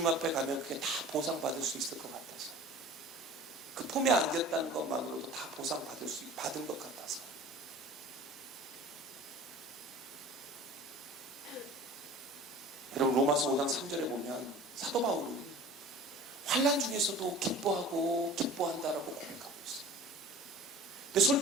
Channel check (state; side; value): normal; both; correlation 0.41